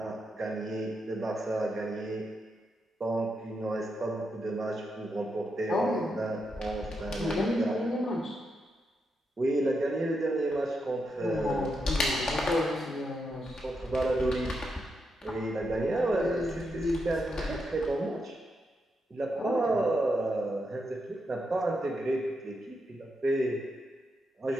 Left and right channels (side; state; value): both; normal; correlation 0.83